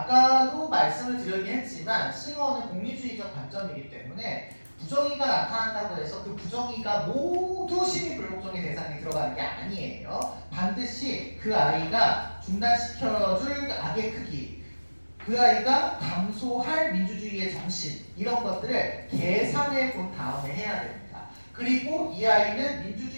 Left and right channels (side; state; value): both; inverted; correlation -1.00